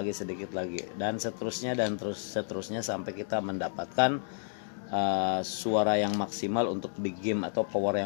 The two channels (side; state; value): right; silent; digital silence